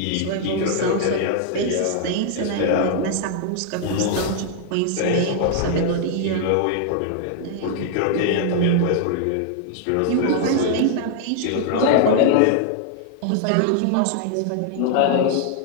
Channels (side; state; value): both; different; correlation 0.00